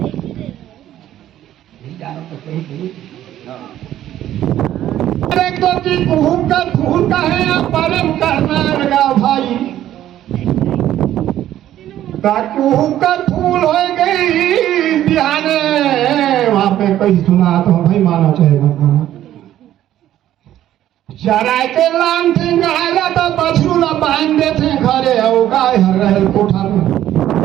कुहुम का फूल का है या परम करना लगा भाई कुहुम का फूल हो गई बिहाने वहां पे कहीं सुना तो भाई माना चाहेगा चराय के लान थे गहागा तो बछरू ला बांध देते घरे हो गाय हर रहे कोठा में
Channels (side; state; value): left; quieter; 12.4 dB